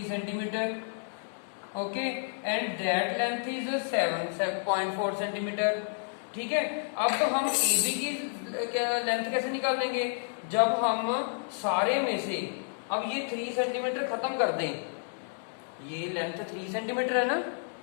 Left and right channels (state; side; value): silent; right; digital silence